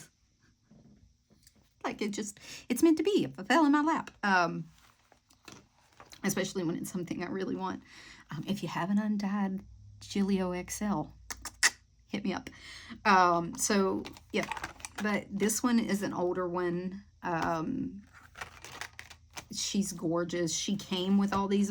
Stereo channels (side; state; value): both; identical; correlation 1.00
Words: Like it's meant to be. If it fell in my lap. Especially when it's something I really want. If you have an undyed Gillio XL, hit me up. So, yeah. But this one is an older one. She's gorgeous. She came with all these